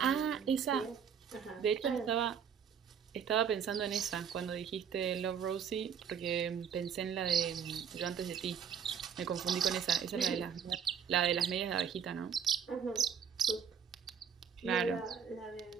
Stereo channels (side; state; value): left; quieter; 7.5 dB